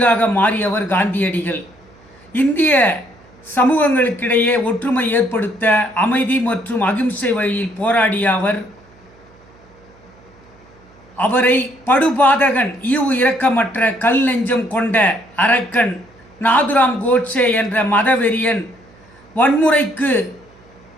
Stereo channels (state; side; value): noise; right; hum, 28 dB below the sound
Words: மாறியவர் காந்தியடிகள். இந்திய சமூகங்களுக்கிடையே ஒற்றுமை ஏற்படுத்த அமைதி மற்றும் அகிம்சை வழியில் போராடிய அவரை படுபாதகன், ஈவு இரக்கமற்ற, கல் நெஞ்சம் கொண்ட அரக்கன் நாதுராம் கோட்சே என்ற மதவெறியன் வன்முறைக்கு